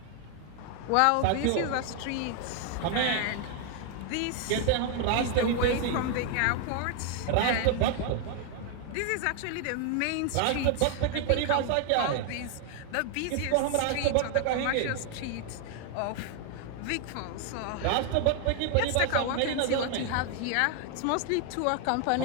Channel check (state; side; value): different; both; correlation 0.00